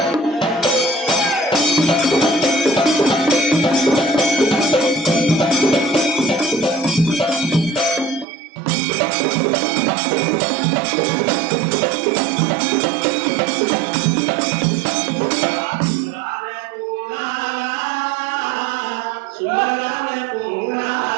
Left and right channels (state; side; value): drops out; left; at 8.2 s